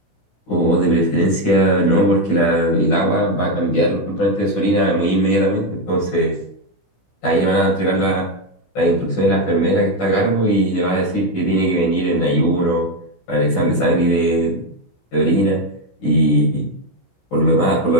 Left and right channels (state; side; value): late; right; 16 ms